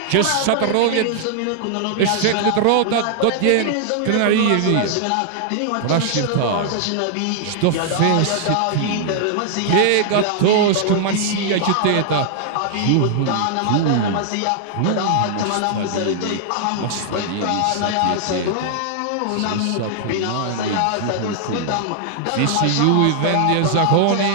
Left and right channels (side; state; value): both; different; correlation -0.01